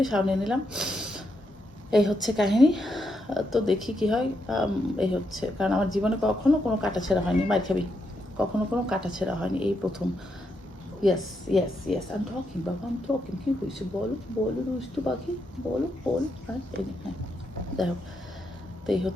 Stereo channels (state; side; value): normal; both; correlation 0.81